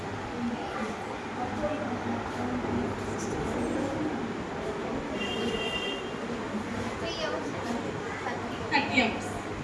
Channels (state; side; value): identical; both; correlation 1.00